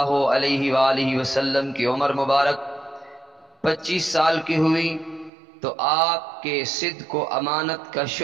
علیہ وآلہ وسلم کی عمر مبارک 25 سال کی ہوئی تو آپ کے صدق و امانت کا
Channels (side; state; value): left; drops out; at 5.3 s